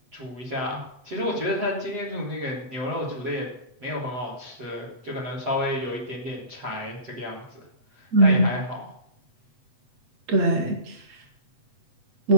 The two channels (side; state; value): left; late; 8.1 ms